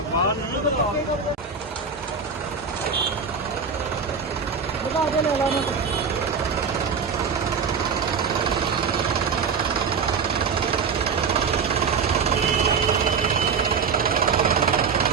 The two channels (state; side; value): quieter; left; 5.7 dB